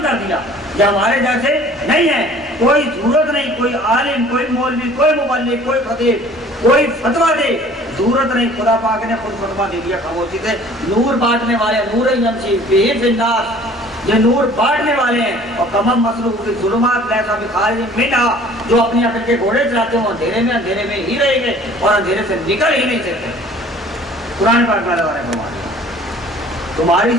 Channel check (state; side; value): normal; both; correlation 0.51